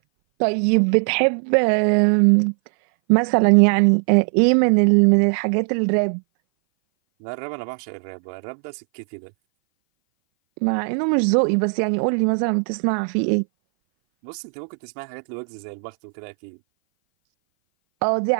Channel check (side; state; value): left; silent; 60 dB below the other